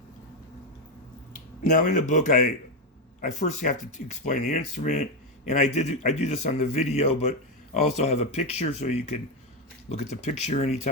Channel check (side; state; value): both; normal; correlation 0.07